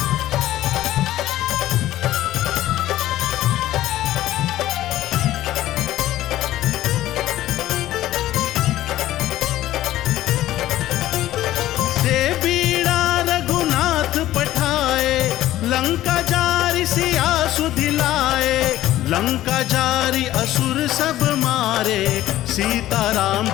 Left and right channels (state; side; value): quieter; right; 14.4 dB